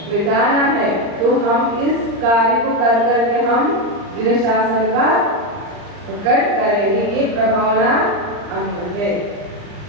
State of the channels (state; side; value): late; left; 39 ms